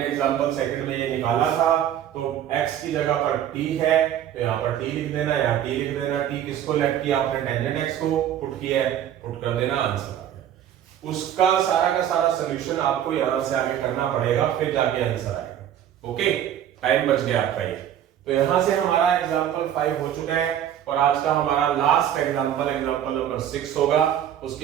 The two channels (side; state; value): left; quieter; 10.5 dB